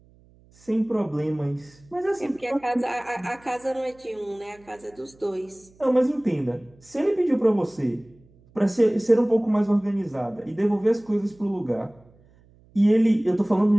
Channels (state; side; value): noise; right; hum, 29 dB below the sound